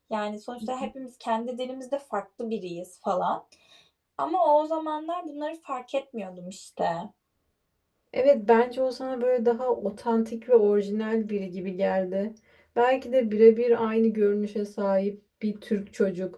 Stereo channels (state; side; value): identical; both; correlation 1.00